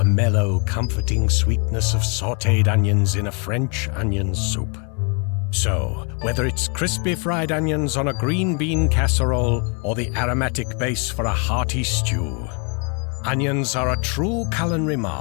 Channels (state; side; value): quieter; right; 35.8 dB